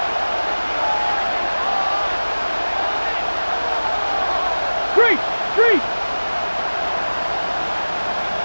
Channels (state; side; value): inverted; both; correlation -1.00